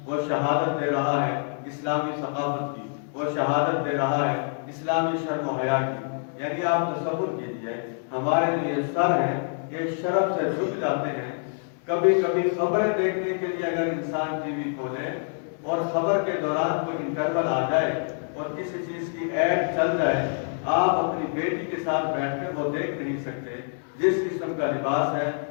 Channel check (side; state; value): right; silent; 59 dB below the other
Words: وہ شہادت دے رہا ہے اسلامی ثقافت کی، وہ شہادت دے رہا ہے اسلامی شرم و حیا کی؟ یعنی آپ تصور کیجئے ہمارے جو یہ سر ہیں یہ شرم سے جھک جاتے ہیں۔ کبھی کبھی خبریں دیکھنے کے لیے اگر انسان ٹی وی کھولے اور خبر کے دوران کوئی انٹرول آ جائے اور کسی چیز کی ایڈ چل جائے، آپ اپنی بیٹی کے ساتھ بیٹھ کر وہ دیکھ نہیں سکتے جس قسم کا لباس ہے،